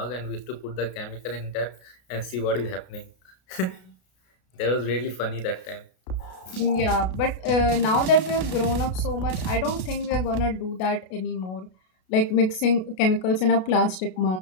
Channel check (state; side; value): late; right; 32 ms